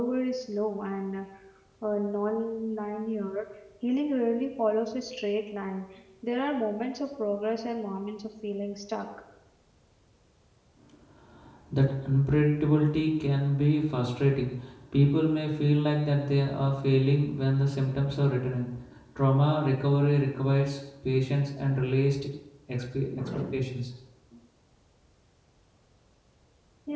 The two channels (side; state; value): both; identical; correlation 1.00